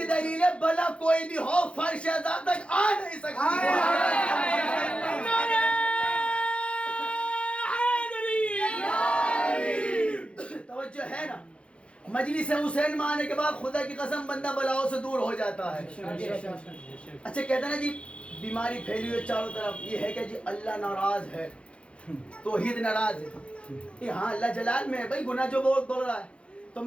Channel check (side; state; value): right; late; 0.060 ms